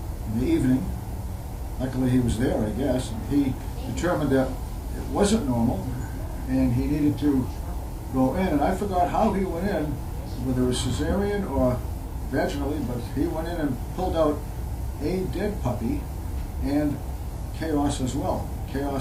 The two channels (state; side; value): identical; both; correlation 1.00